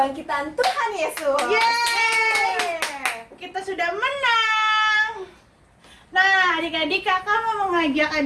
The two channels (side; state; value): both; identical; correlation 1.00